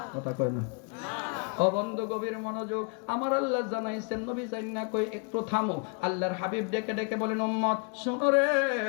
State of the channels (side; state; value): right; quieter; 36.9 dB